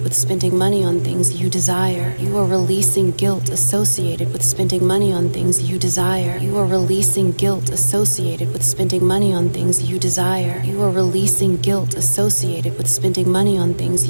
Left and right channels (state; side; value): inverted; both; correlation -1.00